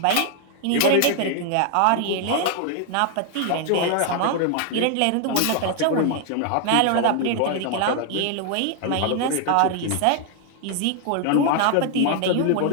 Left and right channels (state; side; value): different; both; correlation 0.00